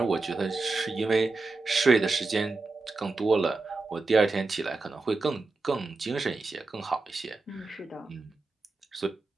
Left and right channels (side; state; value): left; quieter; 3.5 dB